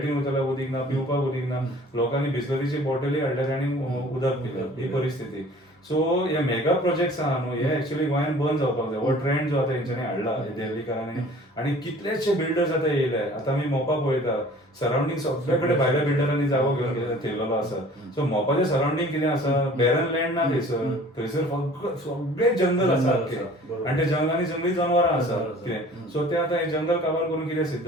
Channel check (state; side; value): normal; both; correlation 0.49